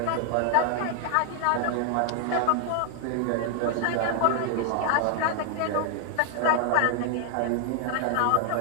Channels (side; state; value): both; different; correlation 0.00